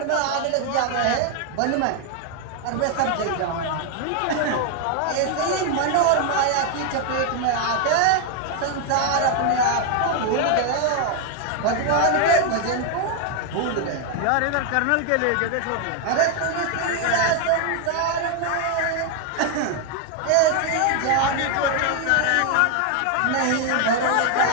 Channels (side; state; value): both; different; correlation 0.00